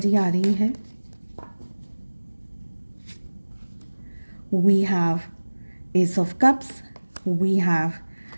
आ रही है। We have ace of cups, we have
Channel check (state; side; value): inverted; both; correlation -1.00